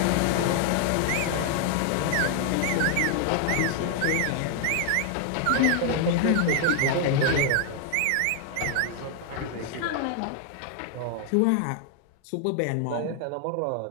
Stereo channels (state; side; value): different; both; correlation 0.00